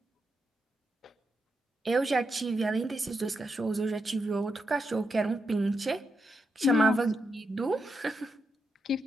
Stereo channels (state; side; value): normal; both; correlation 0.84